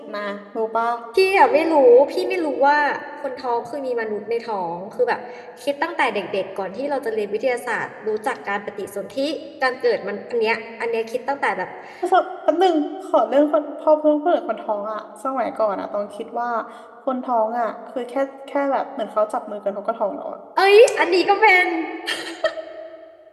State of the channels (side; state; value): both; identical; correlation 1.00